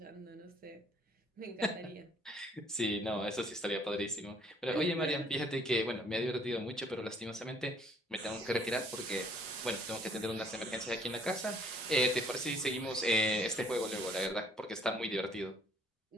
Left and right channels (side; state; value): both; normal; correlation 0.62